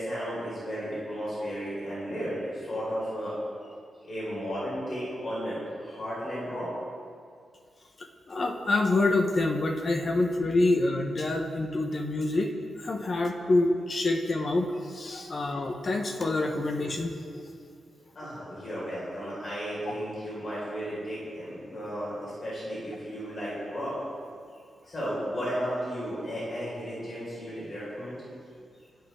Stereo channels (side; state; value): both; normal; correlation 0.89